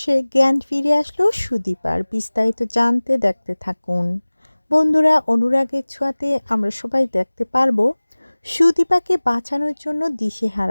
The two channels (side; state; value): both; inverted; correlation -1.00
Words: জ্ঞান ফিরে আসলো সুদীপার। বিস্তারিত জানতে দেখতে থাকুন। বন্ধুরা, অনুরাগের ছোঁয়াতে আমরা সবাই দেখতে পারবো সুদীপাকে বাঁচানোর জন্য